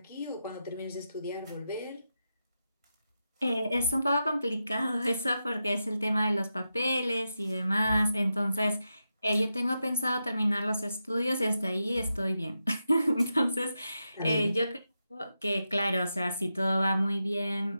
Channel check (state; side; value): inverted; both; correlation -0.88